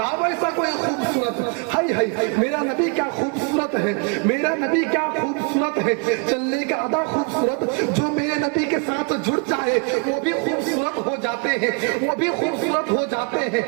ایسا کوئی خوبصورت۔ ہائی ہائی میرا نبی کیا خوبصورت ہے، میرا نبی کیا خوبصورت ہے، چلنے کا ادا خوبصورت، جو میرے نبی کے ساتھ جڑ جائے وہ بھی خوبصورت ہو جاتے ہیں، وہ بھی خوبصورت ہو جاتے ہیں۔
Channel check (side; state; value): left; quieter; 35.8 dB